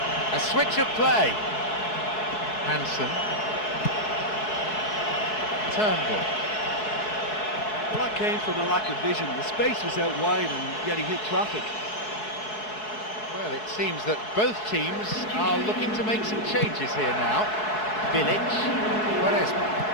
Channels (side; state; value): right; late; 4.7 ms